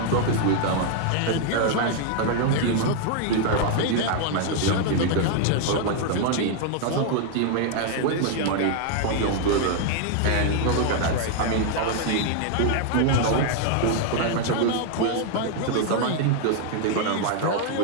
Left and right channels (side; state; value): both; different; correlation 0.00